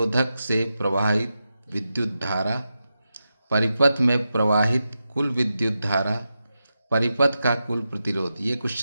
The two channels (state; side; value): inverted; both; correlation -0.90